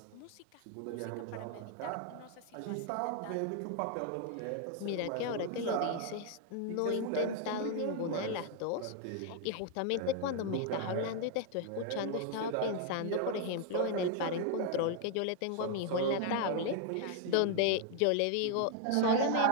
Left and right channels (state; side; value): different; both; correlation 0.00